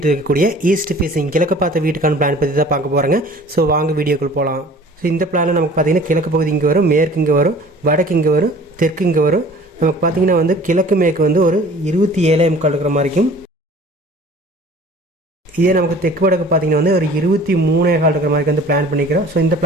இருக்கக்கூடிய ஈஸ்ட் ஃபேஸிங் கிழக்கு பார்த்த வீட்டுக்கான பிளான் பற்றி தான் பார்க்க போகிறாங்க. ஸோ வாங்க வீடியோக்குள் போகலாம். ஸோ இந்த பிளானில் நமக்கு பார்த்திங்கன்னா கிழக்கு பகுதி இங்கே வரும், மேற்கு இங்கே வரும், வடக்கு இங்கே வரும், தெற்கு இங்கே வரும். நமக்கு பார்த்திங்கன்னா கிழக்கு மேற்கு ஒரு 27 இருக்கிற மாதிரிக்கும், இதே நமக்கு தெற்கு வடக்கு பார்த்தீங்கன்னா ஒரு 23 இருக்கிற மாதிரி பிளான் பண்ணிக்கிறோம். ஸோ இந்த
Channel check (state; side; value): normal; both; correlation 0.47